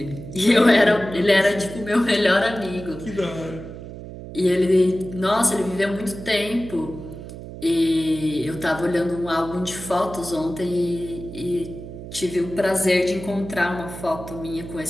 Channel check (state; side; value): noise; right; hum, 12 dB below the sound